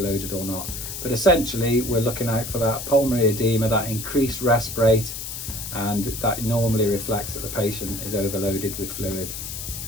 or not, but essentially we're looking out for that pulmonary edema, that increased rest rate, and that normally reflects that the patient is overloaded with fluid.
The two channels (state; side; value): noise; left; hiss, 7 dB below the sound